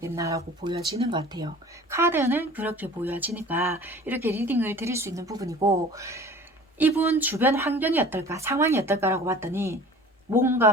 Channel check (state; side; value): normal; both; correlation 0.44